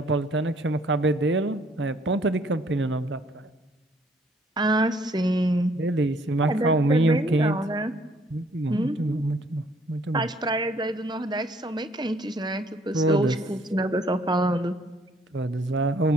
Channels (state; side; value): normal; both; correlation 0.63